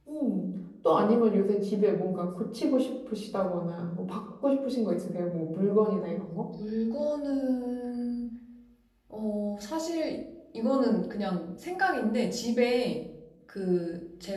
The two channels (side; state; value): both; identical; correlation 1.00